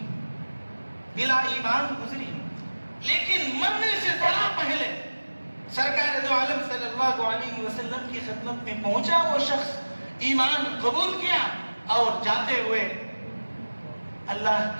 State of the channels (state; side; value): inverted; both; correlation -1.00